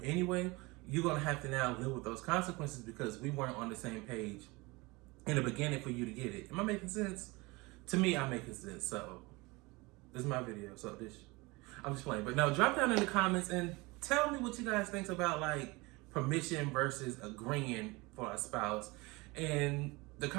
anyway, you're going to have to now live with those consequences because we weren't on the same page in the beginning for you to get it. Am I making sense? To me, I'm making sense. So this is my video. So I'm just playing. But no, drop down in the comments and tell me what you guys think about like permission versus agreeing for a spouse. And the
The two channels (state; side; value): quieter; left; 24.2 dB